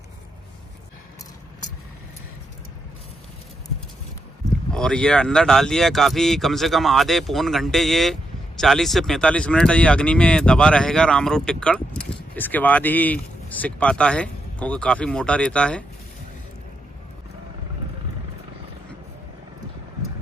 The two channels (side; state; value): both; normal; correlation 0.82